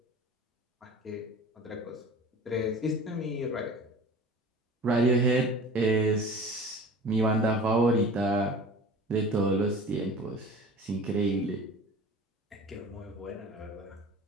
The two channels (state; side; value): normal; both; correlation 0.40